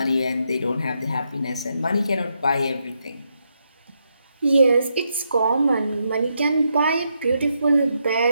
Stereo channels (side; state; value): both; inverted; correlation -0.81